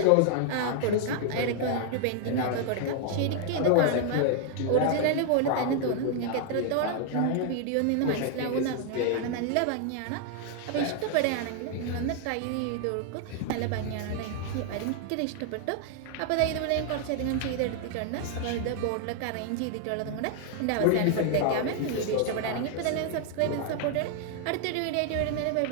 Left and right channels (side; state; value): both; different; correlation 0.00